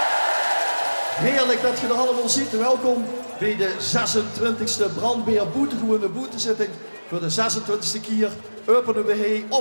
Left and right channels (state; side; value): inverted; both; correlation -1.00